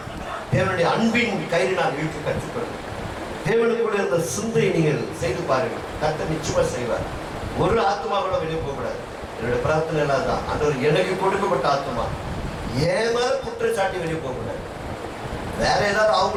தேவனுடைய அன்பின் கயிறினால் இழுக்க கற்றுக்கொள்ளுங்க. தேவனுக்குள்ள இருந்த சிந்தையை நீங்கள் செய்து பாருங்கள். கர்த்தர் நிச்சயமா செய்வார். ஒரு ஆத்மா கூட வெளியே போகக்கூடாது. என்னுடைய பிரார்த்தனை எல்லாம் தான், ஆண்டவர் எனக்கு கொடுக்கப்பட்ட ஆத்மா ஏன் மேல குற்றச்சாட்டி வெளியே போகக்கூடாது. வேற ஏதாவது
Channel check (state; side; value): identical; both; correlation 1.00